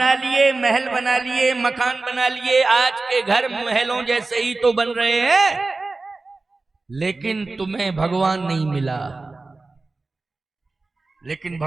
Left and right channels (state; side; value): quieter; left; 3.5 dB